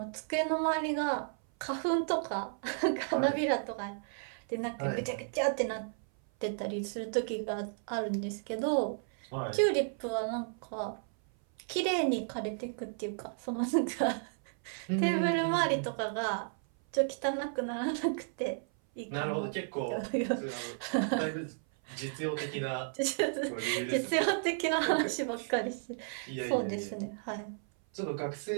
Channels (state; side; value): silent; left; 56 dB below the other